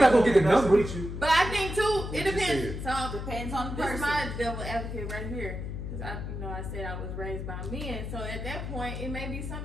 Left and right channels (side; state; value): left; noise; hum, 6 dB below the sound